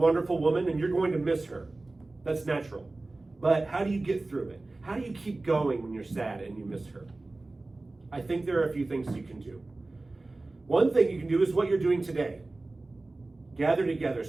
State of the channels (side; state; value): left; quieter; 3.1 dB